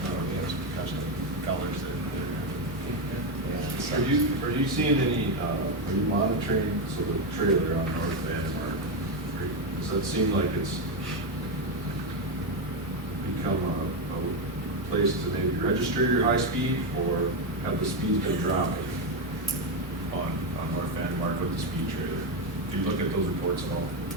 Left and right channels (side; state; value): both; normal; correlation 0.08